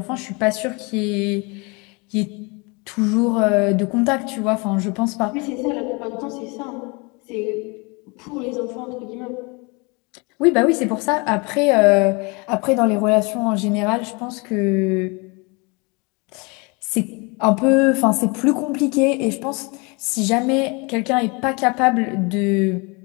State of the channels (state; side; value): quieter; right; 29.2 dB